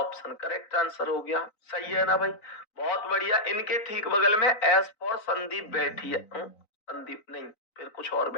करेक्ट आंसर हो गया। सही है ना भाई? बहुत बढ़िया। इनके ठीक बगल में एस फॉर संदीप बैठी है। संदीप नहीं, फिर कुछ और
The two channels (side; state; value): right; late; 3.9 ms